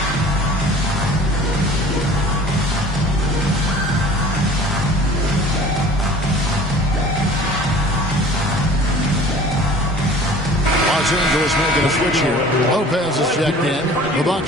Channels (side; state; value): both; normal; correlation 0.46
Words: Los Angeles making a switch here. Lopez is checked in. The